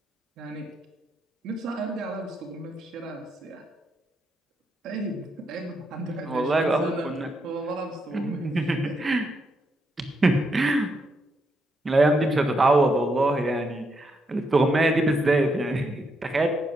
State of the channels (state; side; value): normal; both; correlation 0.79